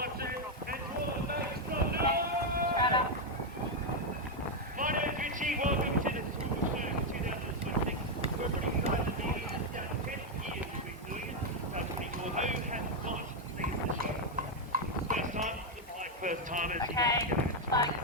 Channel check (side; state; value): both; normal; correlation 0.02